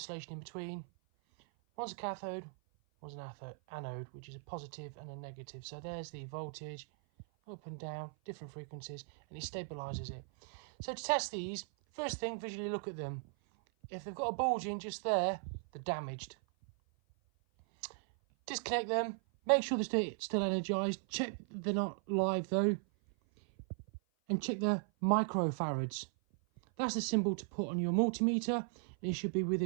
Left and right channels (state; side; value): silent; left; 53 dB below the other